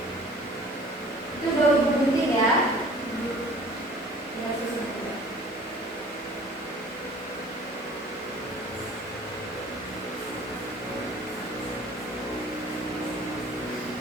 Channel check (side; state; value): both; normal; correlation 0.48